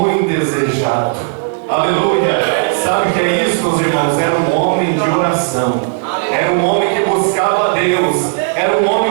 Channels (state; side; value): silent; left; digital silence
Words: desejado. Aleluia. Sabe o que é isso, meus irmãos? Era um homem de oração. Era um homem que buscava a Deus. Era um homem